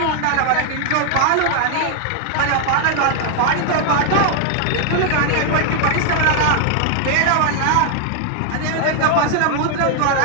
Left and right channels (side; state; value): both; different; correlation 0.00